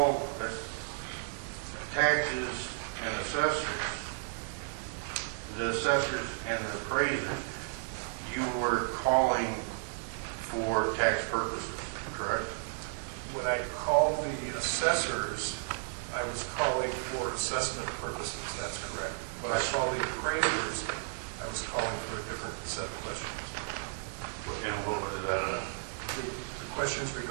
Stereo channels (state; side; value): silent; left; digital silence